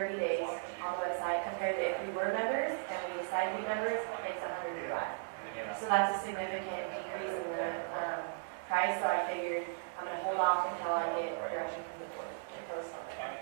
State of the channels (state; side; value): silent; left; digital silence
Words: days on the website, compared to if we were members and we decided to be members, it's $105. So that's a significant decrease in the price, so I figured I'm gonna hold off until I get direction from the board to post on